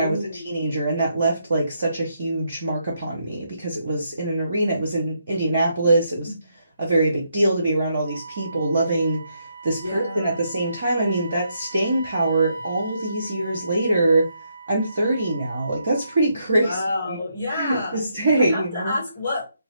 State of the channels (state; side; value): inverted; both; correlation -0.77